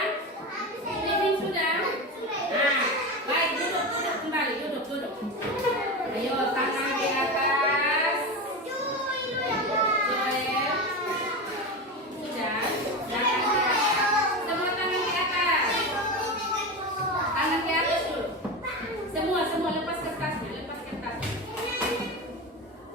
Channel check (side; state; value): both; normal; correlation 0.22